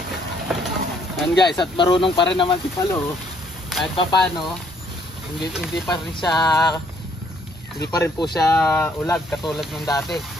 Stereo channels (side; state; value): both; normal; correlation 0.66